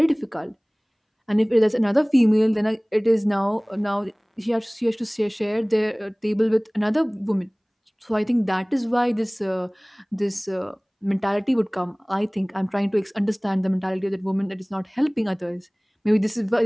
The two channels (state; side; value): identical; both; correlation 1.00